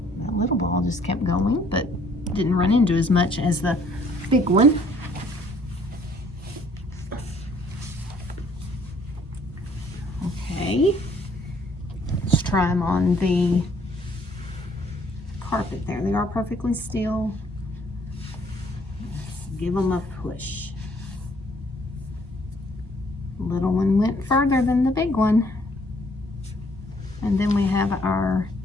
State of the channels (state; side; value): normal; both; correlation 0.62